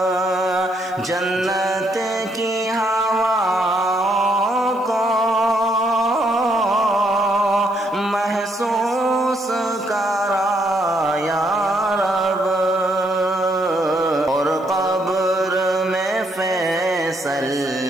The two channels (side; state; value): left; noise; hiss, 29 dB below the sound